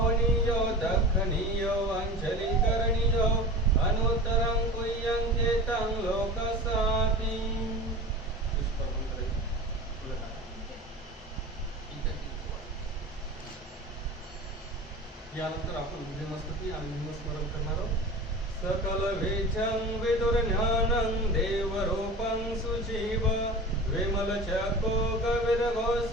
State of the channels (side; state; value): both; normal; correlation 0.34